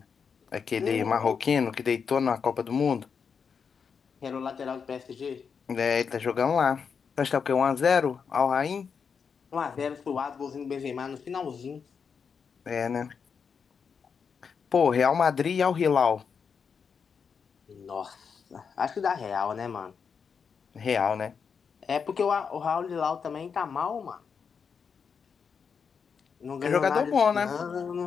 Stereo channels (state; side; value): quieter; right; 6.2 dB